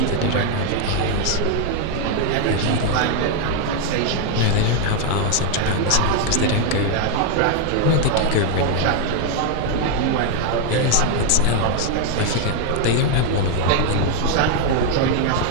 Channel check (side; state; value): both; different; correlation 0.01